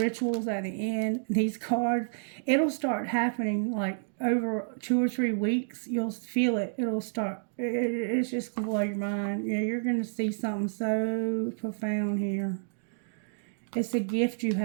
at the end, these cards, it'll start happening like over 2 or 3 weeks. You'll feel it. It'll start. It's just going to blow your mind. Yeah, you're going to see something so profound here. It's a gift you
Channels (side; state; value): left; silent; digital silence